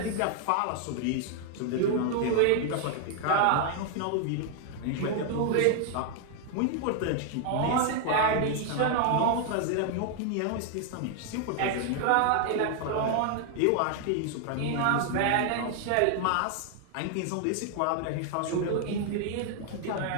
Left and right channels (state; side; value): different; both; correlation 0.00